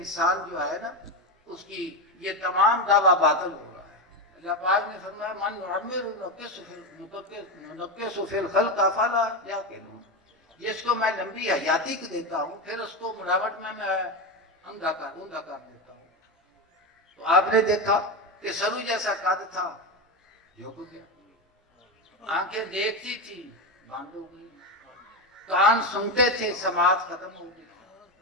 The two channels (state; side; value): normal; both; correlation 0.14